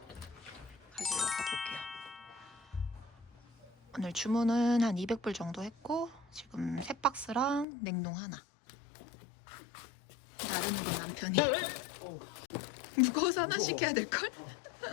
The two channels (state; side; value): drops out; right; at 7.7 s